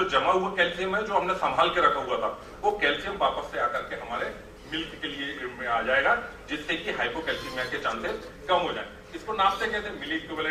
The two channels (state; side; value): identical; both; correlation 1.00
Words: जमा हुआ कैल्शियम है, जो हमने संभाल के रखा हुआ था, वो कैल्शियम वापस से आकर के हमारे मिल्क के लिए आ जाएगा, जिससे कि हाइपोकैल्सीमिया के चांसेस कम हो जाए। इसको नापते कहते हैं, मिली